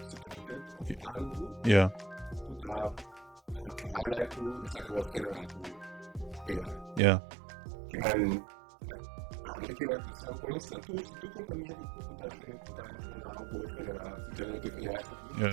of algo, que tá highlight que essa que wordt generar com AI. Que men met que at some points na se tu companhia de kuta allow bo generar generative AI aqui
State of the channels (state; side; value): drops out; left; at 7.0 s